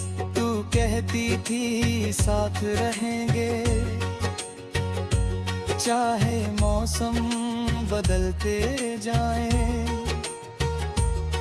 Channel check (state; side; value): identical; both; correlation 1.00